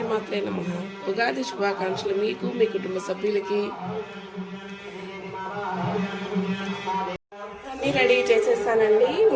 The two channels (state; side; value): identical; both; correlation 1.00